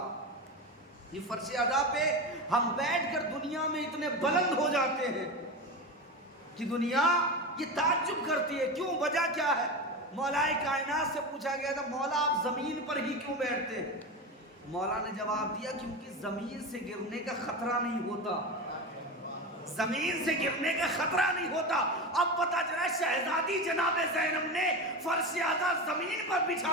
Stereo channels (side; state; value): both; normal; correlation 0.22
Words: یہ فرش اعلیٰ پہ ہم بیٹھ کر دنیا میں اتنے بلند ہو جاتے ہیں کہ دنیا یہ تعجب کرتی ہے. کیوں؟ وجہ کیا ہے؟ مولائے کائنات سے پوچھا گیا تھا مولا آپ زمین پر ہی کیوں بیٹھتے ہیں؟ مولا نے جواب دیا کیونکہ زمین سے گرنے کا خطرہ نہیں ہوتا, زمین سے گرنے کا خطرہ نہیں ہوتا. اب پتا چلا شہزادی جناب زینب نے فرش اعلیٰ زمین پر بچھا